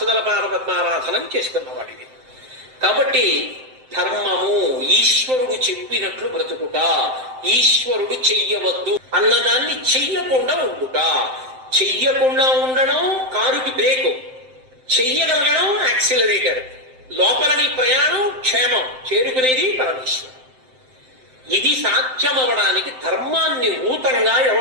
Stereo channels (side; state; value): left; late; 7.7 ms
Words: పాదపద్మారాధనం చేసుకున్నవాడివి. కాబట్టి ధర్మము ఈశ్వరుడు చెప్పినట్లు బ్రతుకుట, ఈశ్వరుడు చెయ్యవద్దు అన్నదాన్ని చెయ్యకుండా ఉండుట. చెయ్యకుండా ఉండడం కారుకి బ్రేకు, చెయ్యగలగడం యాక్సిలరేటర్. లోపలని ప్రయాణం క్షేమం, చేరుకునేది పరమేశ్వరం. ఇది సాధ్యమవడానికి ధర్మాన్ని ఊతంగా